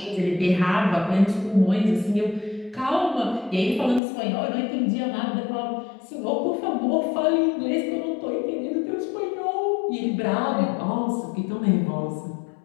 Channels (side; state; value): right; drops out; at 4.0 s